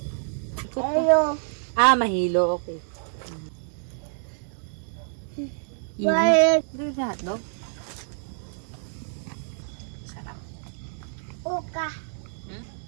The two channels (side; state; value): left; silent; 60 dB below the other